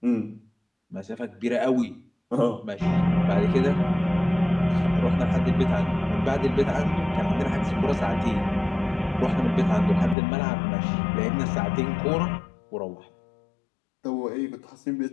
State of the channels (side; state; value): right; drops out; at 10.2 s